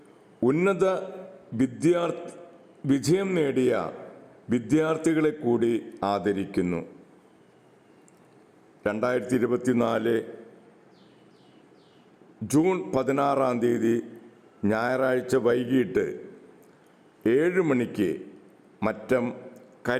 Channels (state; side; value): identical; both; correlation 1.00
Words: ഉന്നത വിജയം നേടിയ വിദ്യാർത്ഥികളെ കൂടി ആദരിക്കുന്നു. 2024 ജൂൺ 16 ഞായറാഴ്ച വൈകിട്ട് 7 മണിക്ക് മറ്റം